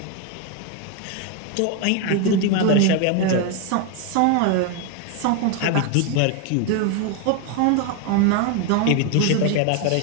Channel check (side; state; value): both; different; correlation 0.01